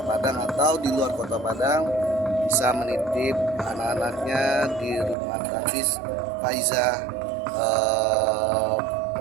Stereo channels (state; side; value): drops out; left; at 5.2 s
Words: Padang atau di luar Kota Padang, bisa menitip anak-anaknya di rumah tahfiz Faizah